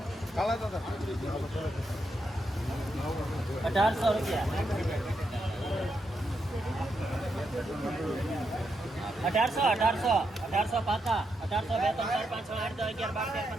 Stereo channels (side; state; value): both; normal; correlation 0.82